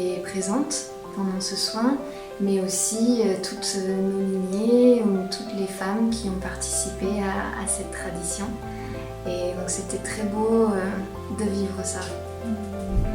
présentes pendant ce soin, mais aussi toutes nos lignées ou toutes les femmes qui ont participé à cette tradition. Et donc c'était très beau de vivre ça.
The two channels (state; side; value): identical; both; correlation 1.00